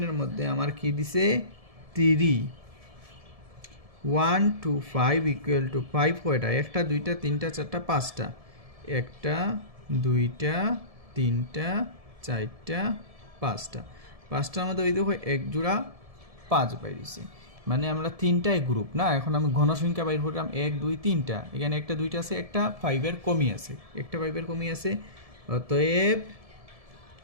মধ্যে আমার কি দিছে 3 1 2 5 ইকুয়াল টু 5 কয়টা একটা দুইটা তিনটা চারটা পাঁচটা একটা দুইটা তিনটা চারটা পাঁচটা পাঁচটার মধ্যে ওই দেখো এক জোড়া 5 বাইরেছে মানে আমরা তিনটাই গ্রুপ না এখন আমি ঘনসংখ্যা বাইর করলাম 1 2 3টা এখানে একটা দুইটা আছে একটা 5 এর কমই আছে একটা 5 এর কমই আছে অতএব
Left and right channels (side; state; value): left; late; 1.7 ms